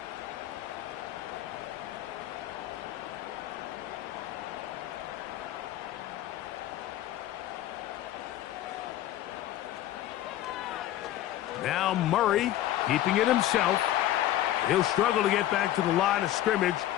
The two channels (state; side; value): quieter; right; 13.4 dB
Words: Now Murray keeping it himself. He'll struggle to get back to the line of scrimmage.